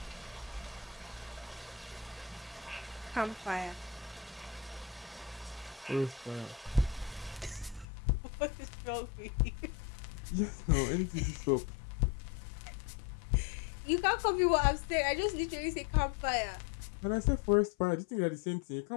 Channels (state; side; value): drops out; right; at 7.9 s